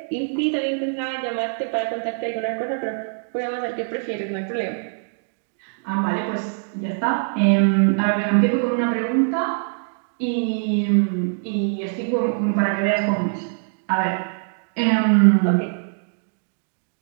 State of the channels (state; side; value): silent; left; digital silence